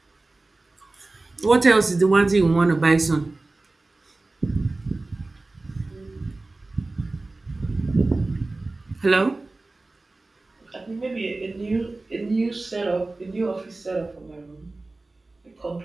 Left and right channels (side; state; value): left; quieter; 3.2 dB